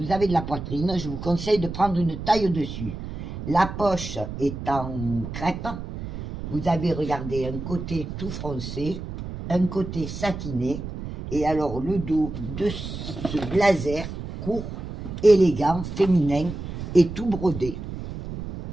avez de la poitrine, je vous conseille de prendre une taille au-dessus. La poche est en crêpe. Vous avez, regardé, un côté tout froncé, un côté satiné. Et alors, le dos de ce blazer court, élégant, féminin et tout brodé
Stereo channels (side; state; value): right; noise; rumble, 8 dB below the sound